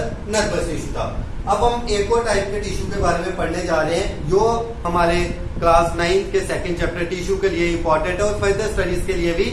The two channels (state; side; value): identical; both; correlation 1.00